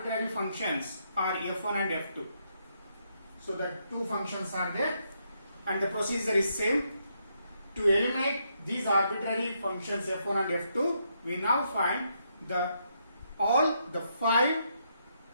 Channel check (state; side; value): inverted; both; correlation -0.77